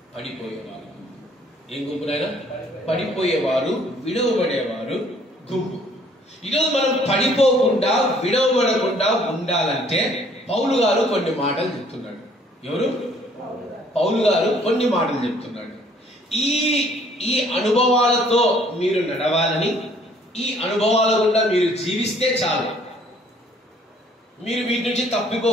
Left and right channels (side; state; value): both; normal; correlation 0.60